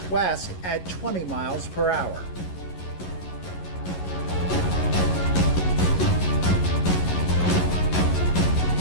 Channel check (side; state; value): right; late; 11 ms